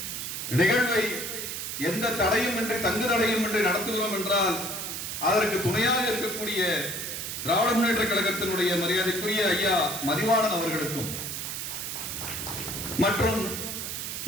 நிகழ்வை எந்த தடையும் இன்றி தங்கு தடையும் இன்றி நடத்துகிறோம் என்றால் அதற்கு துணையாக இருக்கக்கூடிய திராவிட முன்னேற்ற கழகத்தினுடைய மரியாதைக்குரிய ஐயா மதிவாணன் அவர்களுக்கும், மற்றும்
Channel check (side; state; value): right; noise; hiss, 5 dB below the sound